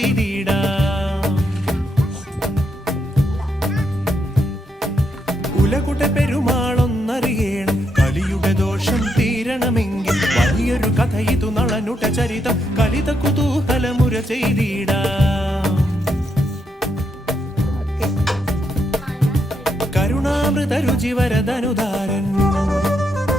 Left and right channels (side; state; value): both; normal; correlation 0.79